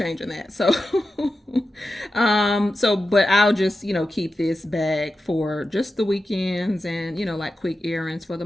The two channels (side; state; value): both; normal; correlation 0.92